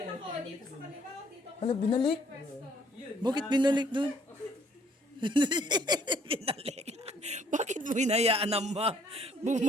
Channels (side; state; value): both; normal; correlation 0.63